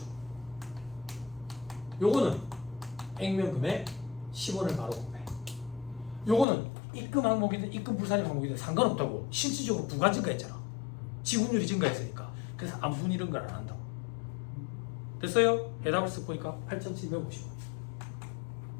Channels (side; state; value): right; drops out; at 6.5 s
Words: 요거는 액면금액 10원을 바로 곱해. 요거는 입금 항목이든 입금 불산입 항목이든 상관없다고. 실질적으로 부가 증가했잖아. 지분율이 증가했으니까. 그래서 안분 이런 걸 안 한다고. 됐어요? 해답을 쓱 보니까 8,750원.